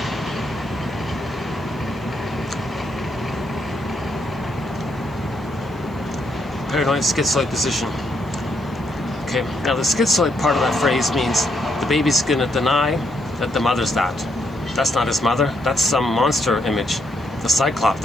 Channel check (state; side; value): noise; right; hiss, 30 dB below the sound